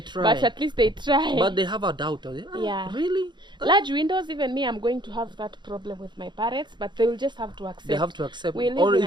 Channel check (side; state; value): left; late; 0.22 ms